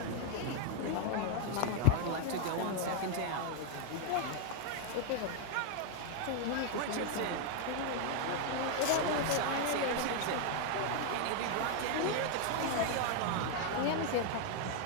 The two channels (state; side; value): different; both; correlation 0.00